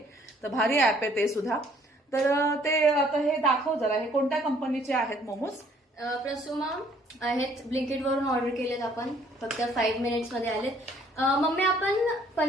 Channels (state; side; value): normal; both; correlation 0.61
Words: तर भारी ऍप आहे ते सुद्धा. तर ते आता हे दाखव जरा, हे कोणत्या कंपनीचे आहेत मोमोज? प्रसुमा आहेत. ब्लिंकिट वरून ऑर्डर केलेत आपण, फक्त 5 मिनिट्स मध्ये आलेत. मम्मी आपण